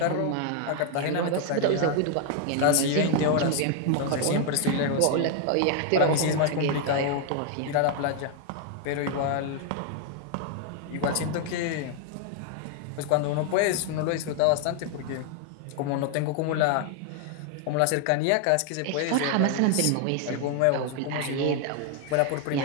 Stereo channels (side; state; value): both; different; correlation 0.00